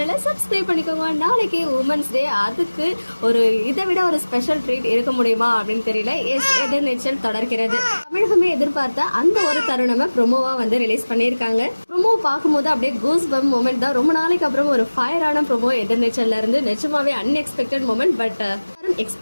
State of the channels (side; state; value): both; inverted; correlation -1.00